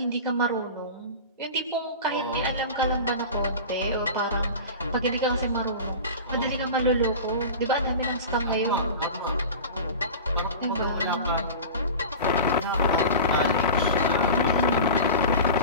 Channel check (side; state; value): both; inverted; correlation -0.32